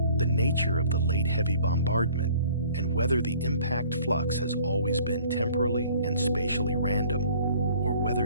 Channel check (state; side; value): inverted; both; correlation -0.53